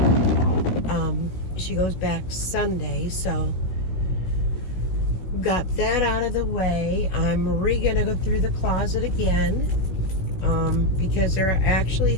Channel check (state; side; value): late; right; 16 ms